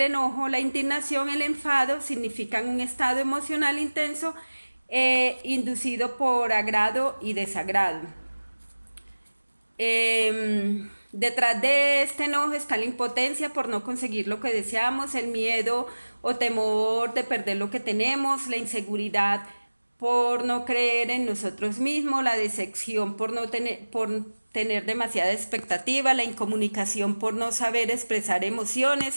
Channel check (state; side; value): inverted; both; correlation -1.00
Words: enojo, la indignación, el enfado, significan un estado emocional intenso inducido por agrado y desagrado. Detrás de este enojo está la impotencia por no conseguir lo que deseamos, el miedo o temor de perder lo que tenemos, la inseguridad por no creer en nosotros mismos, la decepción por tener demasiada expectativa, la incomunicación por no saber expresar